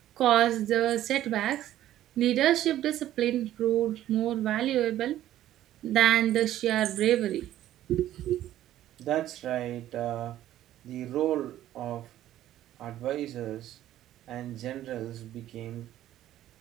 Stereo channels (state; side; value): quieter; left; 13.0 dB